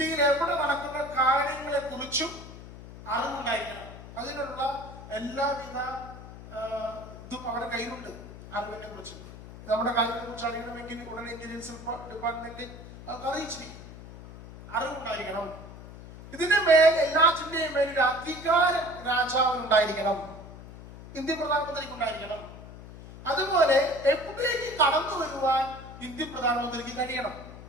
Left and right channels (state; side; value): noise; left; hum, 15 dB below the sound